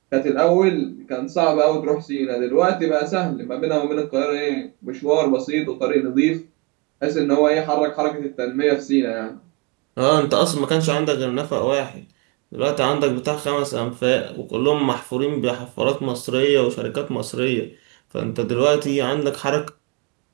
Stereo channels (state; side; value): quieter; left; 26.8 dB